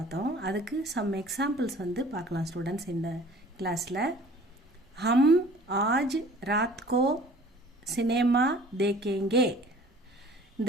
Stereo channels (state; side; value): normal; both; correlation 0.49